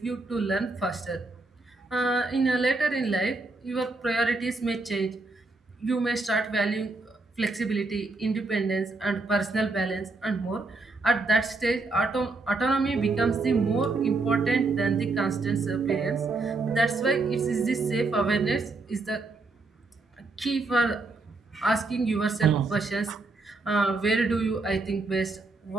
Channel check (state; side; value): quieter; left; 3.5 dB